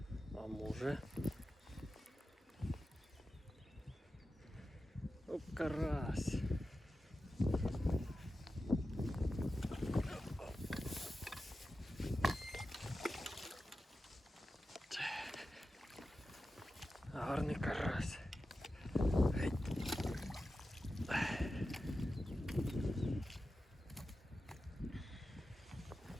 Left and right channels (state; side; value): normal; both; correlation 0.92